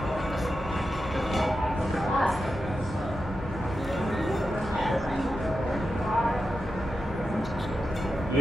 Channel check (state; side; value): normal; both; correlation 0.90